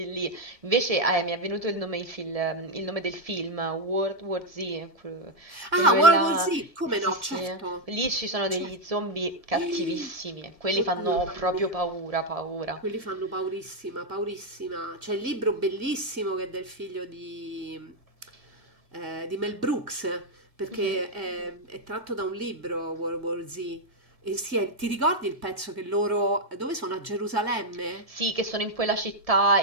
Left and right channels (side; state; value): left; late; 1.9 ms